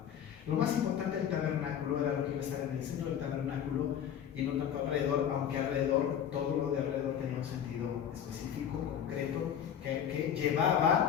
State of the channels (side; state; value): right; quieter; 9.1 dB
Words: Lo más importante del tabernáculo era lo que iba a estar en el centro del tabernáculo y no tanto alrededor, aunque alrededor, todo lo de alrededor tenía un sentido específico, concreto, que